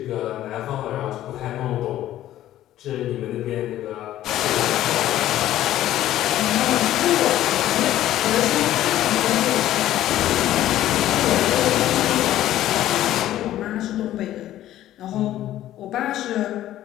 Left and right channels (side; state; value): right; quieter; 13.3 dB